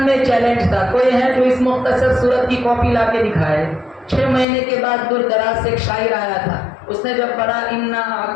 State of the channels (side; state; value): right; drops out; at 4.5 s